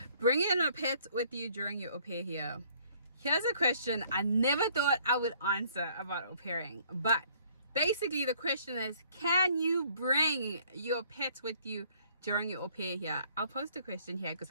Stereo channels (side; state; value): both; inverted; correlation -0.61